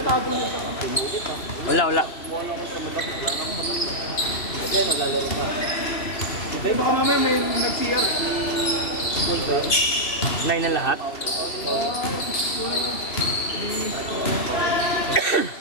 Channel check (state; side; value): late; right; 2.8 ms